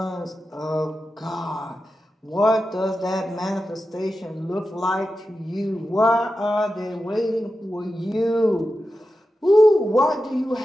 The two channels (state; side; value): normal; both; correlation 0.91